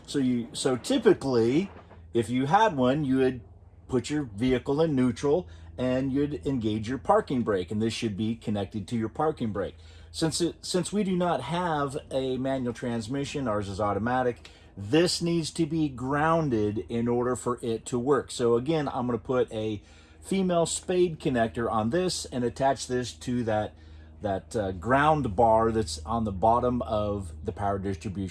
So typically, if you had one, you would put your vehicle in neutral and you'd engage your parking brake, and this should be connected to your parking brake. Since we do not have a manual transmission, ours is automatic, this needs to be grounded in order for it to work. So again, I'm going to put a female spade connector on this and attach this to that ground bar that's on the bottom of the power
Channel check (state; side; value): identical; both; correlation 1.00